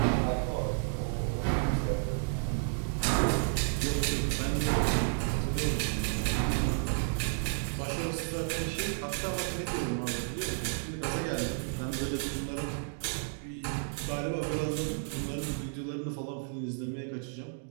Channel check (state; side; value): silent; left; digital silence